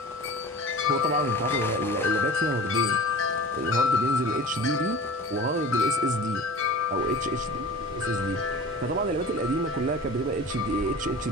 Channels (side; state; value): both; normal; correlation 0.38